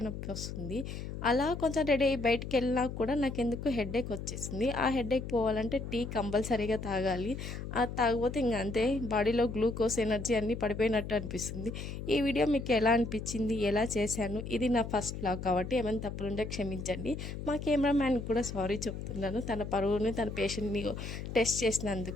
నొప్పి వస్తుంది. అలా కొంచెం రెడీ అయ్యి బయటికి వెళ్ళినా కూడా నాకెందుకు హెడేక్ వచ్చేసింది. ఆ హెడేక్ పోవాలంటే టీ కంపల్సరీగా తాగాలి. అది తాగకపోతే ఇంక అంతే, బాడీలో గ్లూకోజ్, ఎనర్జీ అన్నీ పడిపోయినట్టు అనిపిస్తుంది. ఈ వీడియో మీకు ఎలా అనిపించింది, ఎలా చేశాను, ఇది నా ఫస్ట్ వ్లాగ్ కాబట్టి ఏమైనా తప్పులుంటే క్షమించండి. మా కెమెరామ్యాన్కి కూడా సారీ చెప్తున్నాను. తన పరువుని, తన పేషెంట్ని టెస్ట్ చేసినందుకు.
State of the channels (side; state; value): left; noise; hum, 7 dB below the sound